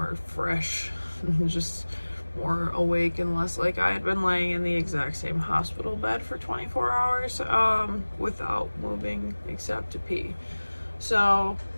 fresh and just more awake, and less like I had been laying in the exact same hospital bed for 24 hours without moving except to pee. So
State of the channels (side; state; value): both; inverted; correlation -1.00